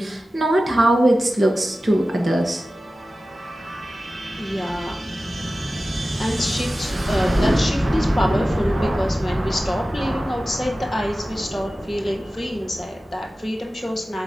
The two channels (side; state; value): both; normal; correlation 0.95